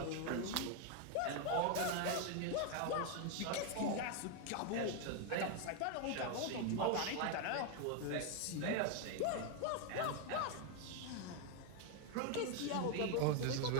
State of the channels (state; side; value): different; both; correlation 0.01